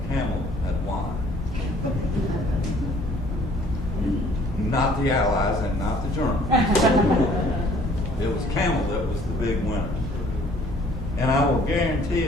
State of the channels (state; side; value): normal; both; correlation 0.57